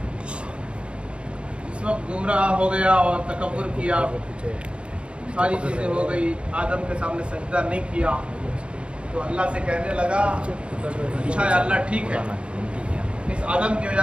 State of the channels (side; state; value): left; late; 0.057 ms